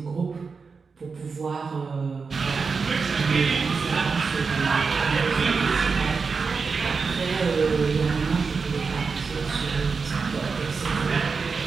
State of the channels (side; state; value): left; quieter; 4.9 dB